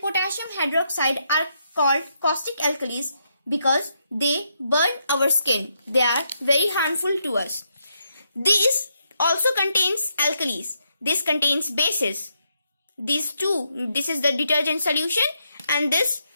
potassium hydroxide are called caustic alkalis because they burn our skin. They are very harmful to us. These also contains alkalis. This contains bases. These two, this is the detergent solution and this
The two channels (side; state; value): both; inverted; correlation -0.79